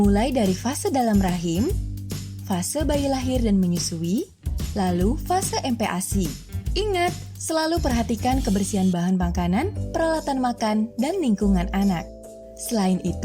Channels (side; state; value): both; identical; correlation 1.00